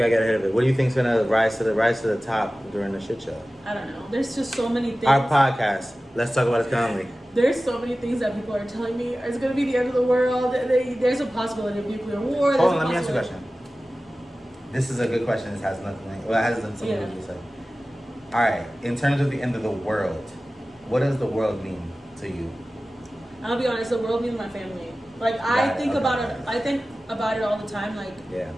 do you think's gonna rise to the top during the shit show? I don't know. There's just so many things. Our podcast. Let's talk about it calmly. There's so many things that people are telling me it's gonna be the end of the world. There's a possibility of nuclear war. Hold on, let me ask you a question. This is a good question. This has nothing. Well, it has something to do with it. All right. In terms of the end of the world, what does the world mean to you? I'll be honest. The world means my family. Like I think about it. I think about it all the time. Like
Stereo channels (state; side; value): normal; both; correlation 0.96